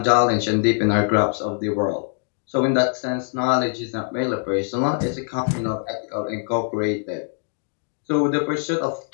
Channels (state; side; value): silent; right; 64 dB below the other